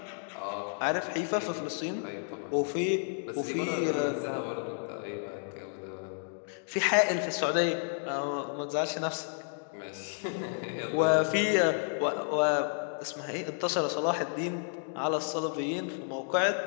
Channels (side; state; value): right; silent; 57 dB below the other